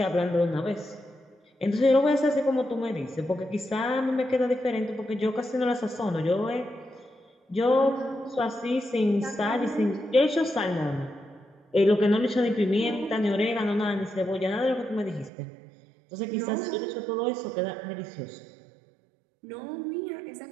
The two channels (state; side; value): drops out; left; at 15.3 s